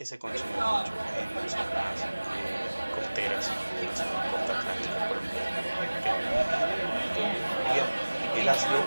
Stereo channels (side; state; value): both; inverted; correlation -1.00